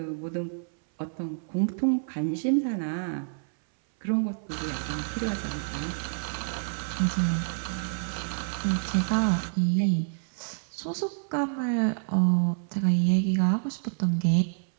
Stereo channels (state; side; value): silent; left; 59 dB below the other